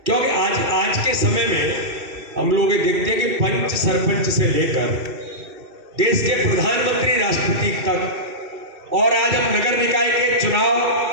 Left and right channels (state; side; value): late; left; 2.7 ms